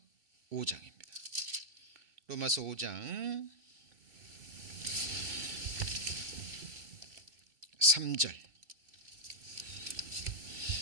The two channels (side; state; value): left; late; 2.6 ms